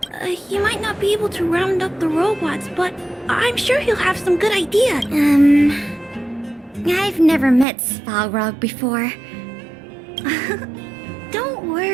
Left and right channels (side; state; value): left; drops out; at 7.7 s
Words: He might not be able to round up the robots, but I'm sure he'll have some good ideas. I've never met Svarog before. Don't